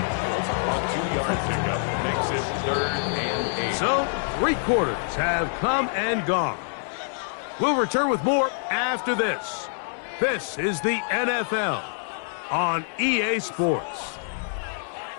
2-yard pickup makes it 3rd and 8. So, 3 quarters have come and gone. We'll return with more after this. This is the NFL on EA Sports.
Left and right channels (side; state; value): right; silent; 61 dB below the other